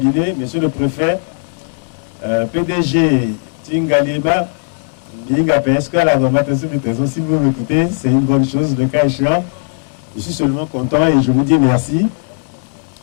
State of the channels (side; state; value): right; silent; digital silence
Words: monsieur le préfet, PDG Ngaliema, est-ce que la normatisation du trésor, si vous m'écoutez, c'est une bonne chose, le cas échéant. Je suis seulement content et je vous dis merci.